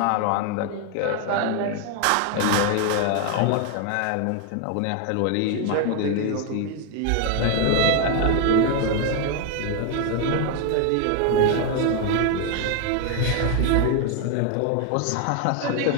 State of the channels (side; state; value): both; different; correlation 0.01